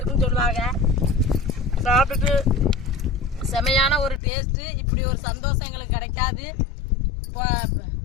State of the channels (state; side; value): drops out; right; at 4.2 s